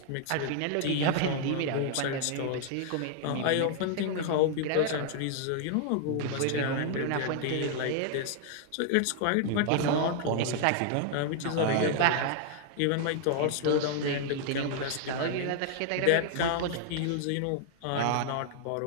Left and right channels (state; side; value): different; both; correlation 0.00